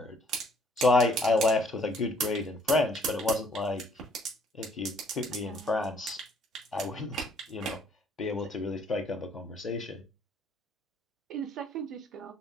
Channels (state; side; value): normal; both; correlation 0.63